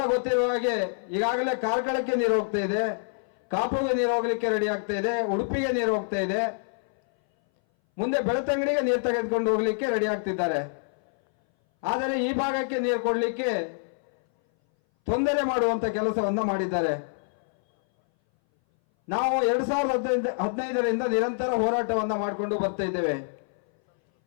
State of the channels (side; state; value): right; silent; 59 dB below the other